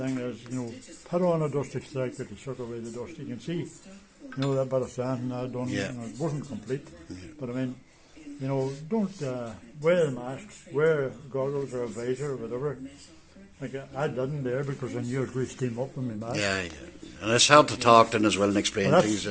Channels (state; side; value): identical; both; correlation 1.00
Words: is, you know, put on a dust extractor to suck away the dust. You can see, you know, that bit of sand I done, Yeah. you know, it wasn't complete. But I mean, you know, don't wear a mask, wear goggles or a visor or whatever. Like I didn't there because I knew it would steam up in my mask. yeah, yeah. And it's hard to talk then as well and explain But things.